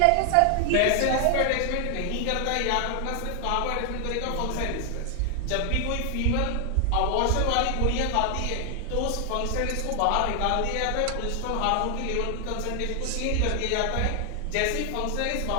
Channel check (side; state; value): both; different; correlation 0.00